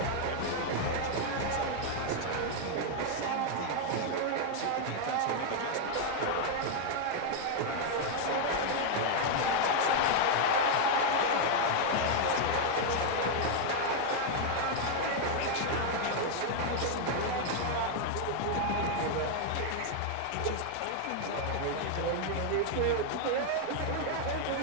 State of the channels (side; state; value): both; different; correlation 0.00